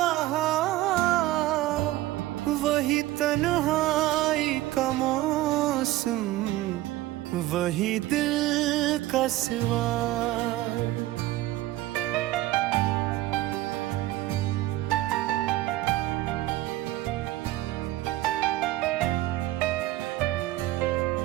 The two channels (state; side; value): quieter; left; 16.3 dB